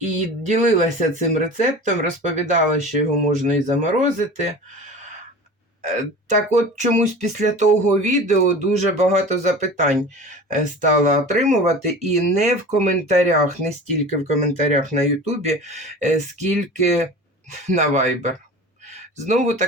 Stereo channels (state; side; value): normal; both; correlation 0.37